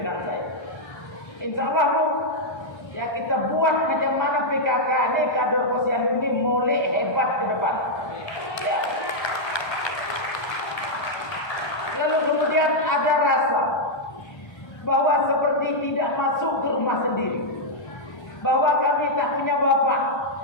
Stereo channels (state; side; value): late; right; 1.3 ms